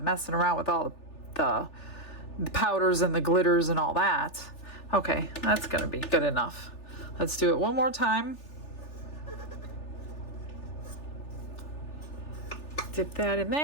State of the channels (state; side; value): late; right; 3.4 ms